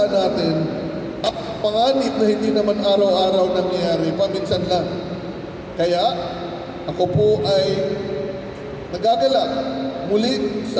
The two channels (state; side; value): identical; both; correlation 1.00